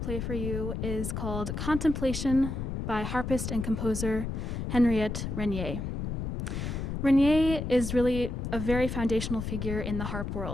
for you is called Contemplation by harpist and composer Henriette Renier. Renier is really a very foundational figure in the harp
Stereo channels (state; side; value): noise; left; rumble, 4 dB below the sound